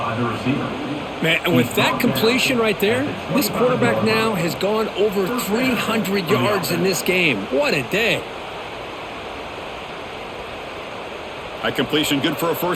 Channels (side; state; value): both; identical; correlation 1.00